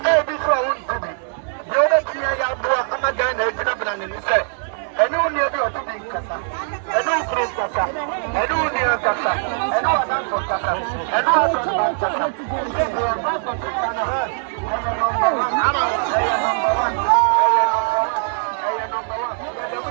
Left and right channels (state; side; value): silent; left; 65 dB below the other